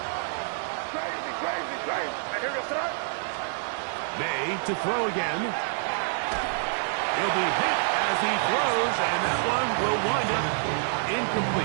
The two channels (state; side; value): silent; left; 60 dB below the other